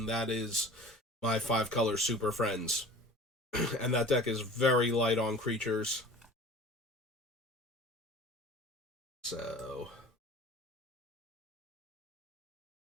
that is my 5-color Super Friends. And that deck is very light on creatures. So,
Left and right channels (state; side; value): normal; both; correlation 0.43